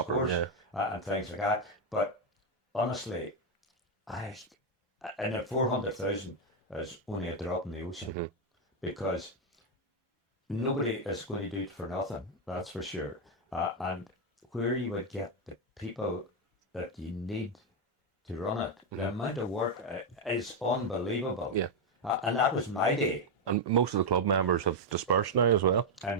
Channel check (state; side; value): normal; both; correlation 0.02